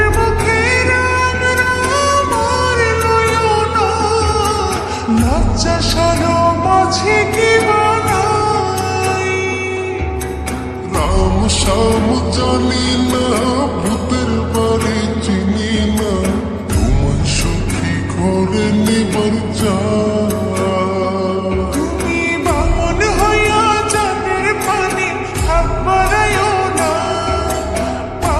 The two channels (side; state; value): both; identical; correlation 1.00